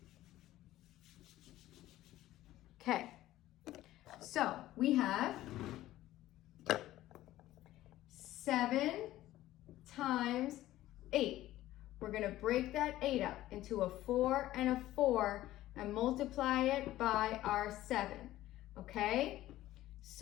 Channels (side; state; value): right; quieter; 15.0 dB